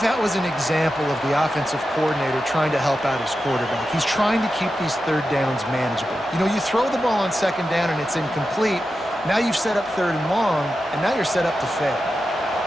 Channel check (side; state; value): both; normal; correlation 0.91